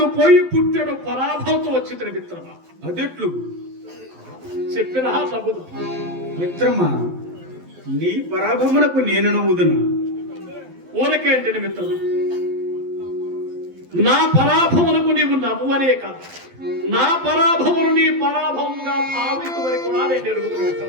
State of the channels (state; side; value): late; left; 12 ms